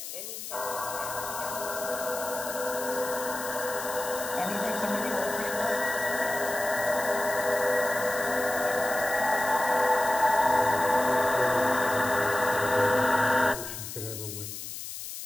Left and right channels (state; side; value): noise; left; hiss, 9 dB below the sound